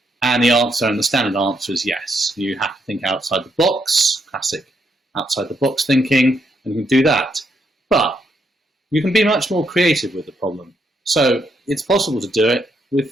And the answer, and the standard answer, is yes. You have to think outside the box, classic outside the box thinking, and you can do that. But you can be much more creative with the problem. So it's possible to do it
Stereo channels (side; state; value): both; normal; correlation 0.77